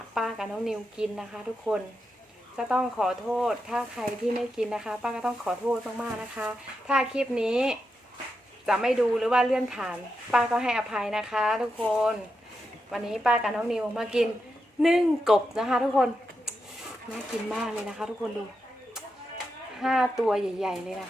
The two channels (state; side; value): normal; both; correlation 0.86